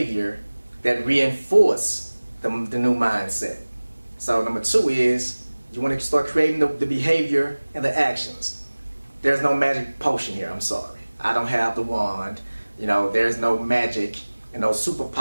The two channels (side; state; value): both; inverted; correlation -1.00